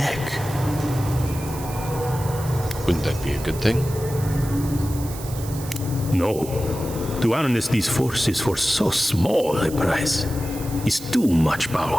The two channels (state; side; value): noise; right; hiss, 14 dB below the sound